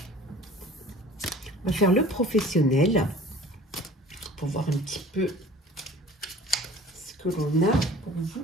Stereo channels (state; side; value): normal; both; correlation 0.46